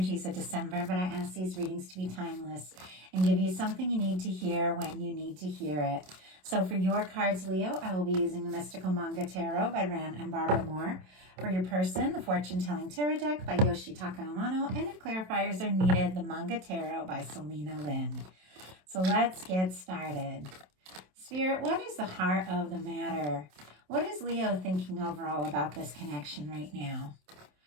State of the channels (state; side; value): late; left; 27 ms